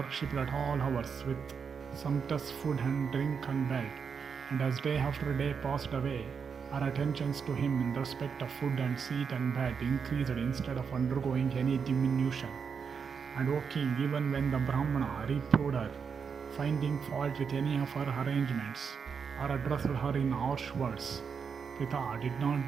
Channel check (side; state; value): left; quieter; 6.3 dB